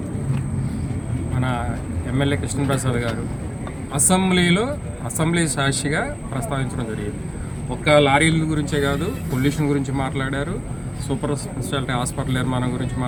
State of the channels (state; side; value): identical; both; correlation 1.00